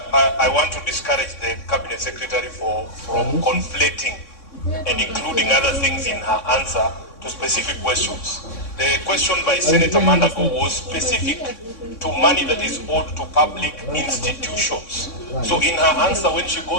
I want to discourage the Cabinet Secretary from conflating and including other things in her answer to specific questions. The question by Senator Mandago was specific to money that is owed to public institutions. So in her answer, when she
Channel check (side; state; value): right; late; 3.6 ms